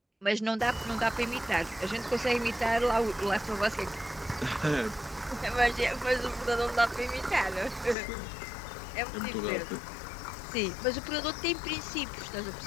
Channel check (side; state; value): right; drops out; at 8.0 s